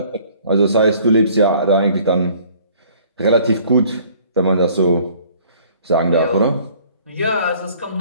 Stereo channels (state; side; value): inverted; both; correlation -0.56